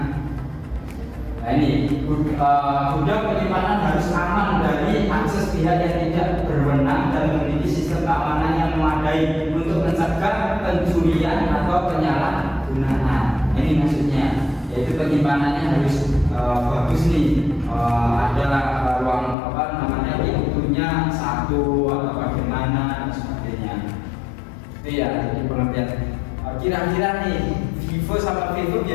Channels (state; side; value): drops out; right; at 19.4 s